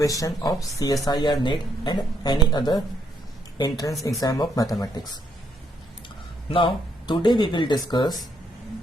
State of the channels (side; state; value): both; normal; correlation 0.74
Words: of CSIR NET and any other entrance exam of mathematics. Now today we will discuss